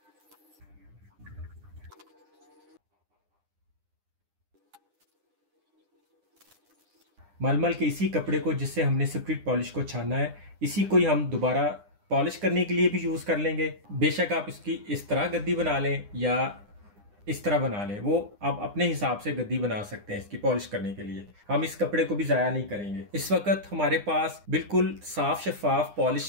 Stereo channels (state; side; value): late; left; 9.8 ms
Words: मलमल के इसी कपड़े को जिससे हमने स्प्रिट पॉलिश को छाना है, इसी को ही हम दोबारा पॉलिश करने के लिए भी यूज कर लेंगे। बेशक आप इसकी इस तरह गद्दी बना लें या इस तरह बना लें, वो आप अपने हिसाब से गद्दी बना सकते हैं इसकी पॉलिश करने के लिए। हम इस कपड़े को भी जाया नहीं करेंगे। इस वक्त हमारे पास बिल्कुल साफ शफाफ